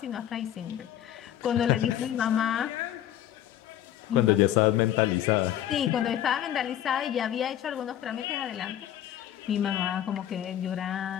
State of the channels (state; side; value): quieter; right; 11.6 dB